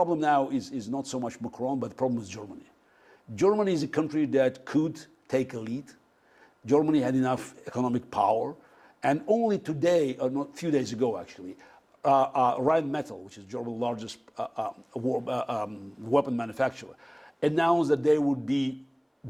now is not so much Macron, but the problem is Germany. Germany is a country that could take a lead. Germany had enough economic power. And only today, or not a few days ago actually, Rheinmetall, which is Germany's largest weapon manufacturer, announced that they would be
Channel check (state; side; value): identical; both; correlation 1.00